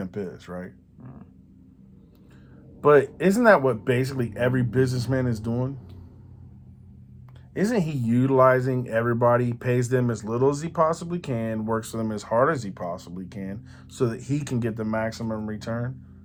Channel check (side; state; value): both; identical; correlation 1.00